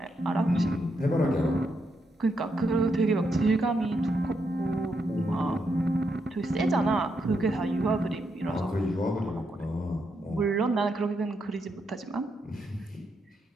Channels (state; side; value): normal; both; correlation 0.81